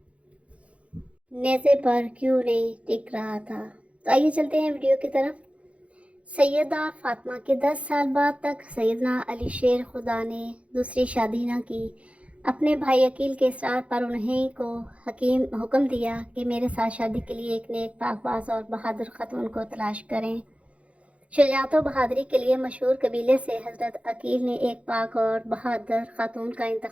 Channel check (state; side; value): late; left; 0.063 ms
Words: نیزے پر کیوں نہیں ٹک رہا تھا۔ تو آئیے چلتے ہیں ویڈیو کی طرف۔ سیدہ فاطمہ کے 10 سال بعد تک سیدنا علی شیر خدا نے دوسری شادی نہ کی۔ اپنے بھائی عقیل کے اصرار پر انہیں کو حکم دیا کہ میرے ساتھ شادی کے لیے ایک نیک پاک باز اور بہادر خاتون کو تلاش کریں۔ شجاعت و بہادری کے لیے مشہور قبیلے سے حضرت عقیل نے ایک پاک اور بہادر خاتون کا